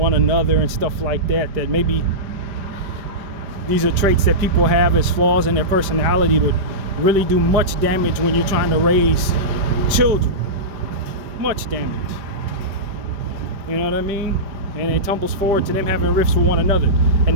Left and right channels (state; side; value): late; left; 5.1 ms